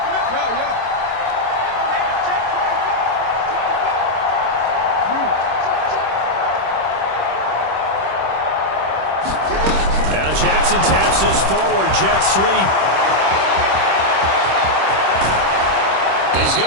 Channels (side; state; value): left; late; 26 ms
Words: Check 25. Now Jackson taps his forward jet sweep. He's